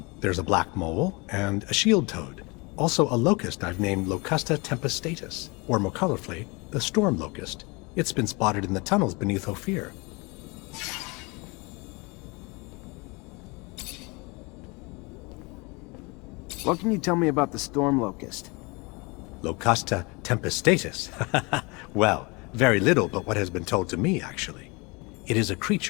There's a black mole and a shield toad. Also a locust I've named Locusta tempestatus, or more colorfully, the storm locust. It's been spotted in the tunnels beneath Ophir. What can you tell me about the storm locust? Locusta tempestatus. Well, very little but what has been told to me, actually. It is a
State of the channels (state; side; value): quieter; right; 27.7 dB